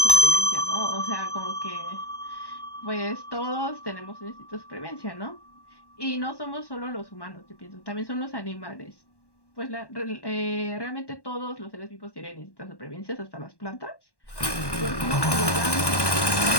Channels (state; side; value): late; right; 1.1 ms